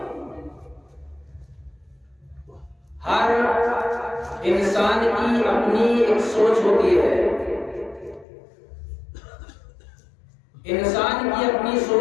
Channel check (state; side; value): drops out; right; at 8.2 s